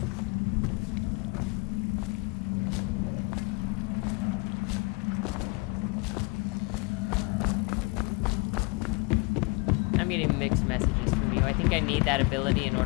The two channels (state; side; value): quieter; right; 28.5 dB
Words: I'm getting mixed messages from you. I think I need that ability in